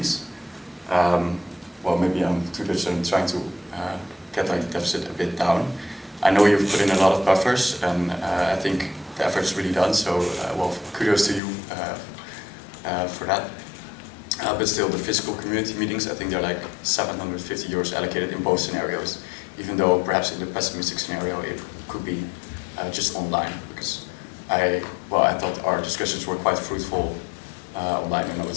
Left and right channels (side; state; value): right; drops out; at 11.4 s